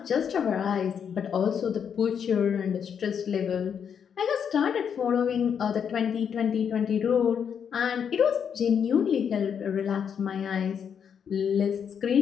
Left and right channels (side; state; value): right; quieter; 7.6 dB